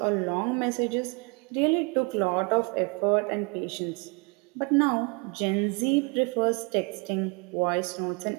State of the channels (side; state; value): left; quieter; 31.5 dB